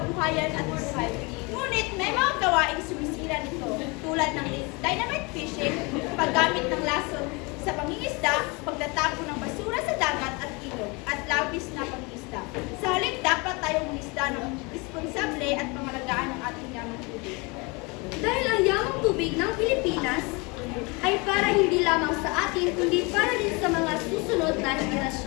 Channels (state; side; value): quieter; right; 28.1 dB